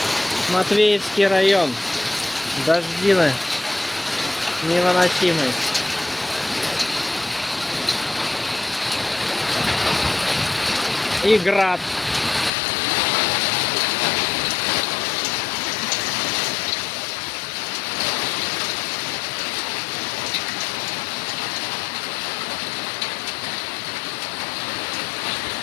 Матвеевский район. Дождины невыносимые. И град.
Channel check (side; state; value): right; drops out; at 12.5 s